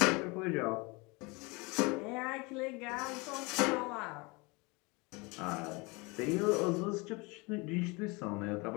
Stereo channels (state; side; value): quieter; right; 27.0 dB